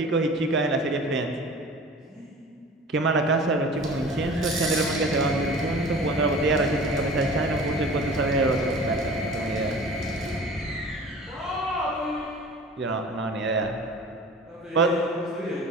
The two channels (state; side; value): normal; both; correlation 0.41